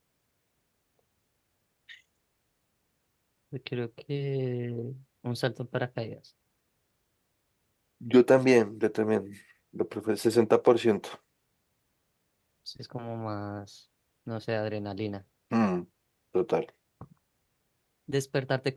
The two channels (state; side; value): identical; both; correlation 1.00